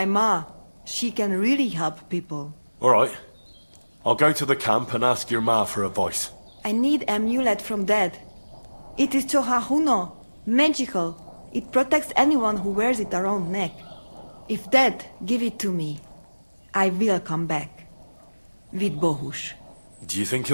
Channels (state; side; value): inverted; both; correlation -1.00